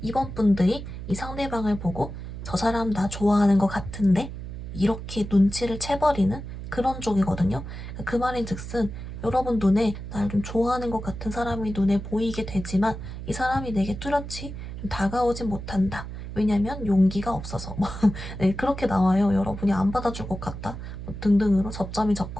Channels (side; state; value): right; noise; hum, 9 dB below the sound